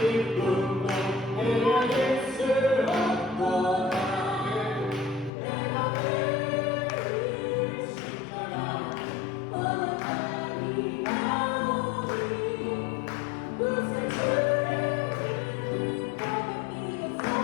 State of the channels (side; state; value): right; drops out; at 5.3 s